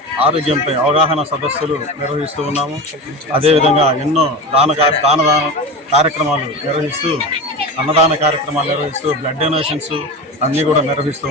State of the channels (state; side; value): normal; both; correlation 0.26